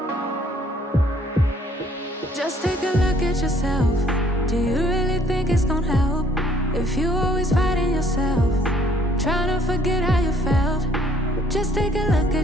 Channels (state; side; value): normal; both; correlation 0.61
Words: Just take a look at yourself. Do you really think it's gonna help if you always fighting yourself, trying to forget how you felt? Just take a look